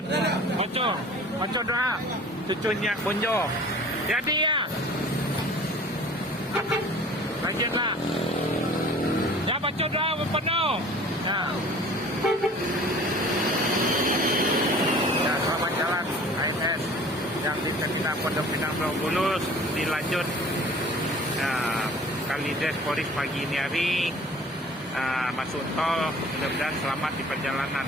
Baca doa. Cucunya Bonjo. Jadi ya. Lanjutlah. Ya baca doa penuh. Ya. Ya selamat jalan AMS yang di Terminal Pondok Pinang Pulau Bulus dilanjut. Kalides Polis pagi ini hari masuk tol, mudah-mudahan selamat di perjalanan.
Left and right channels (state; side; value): normal; both; correlation 0.46